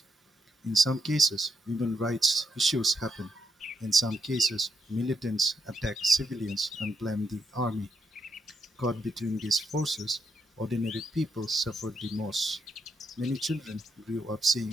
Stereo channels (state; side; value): normal; both; correlation 0.76